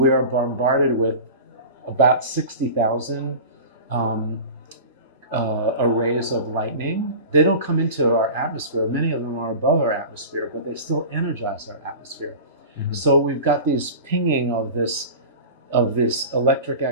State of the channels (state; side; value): inverted; both; correlation -0.34